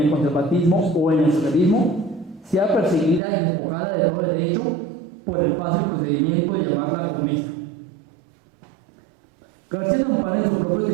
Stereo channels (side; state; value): left; drops out; at 3.2 s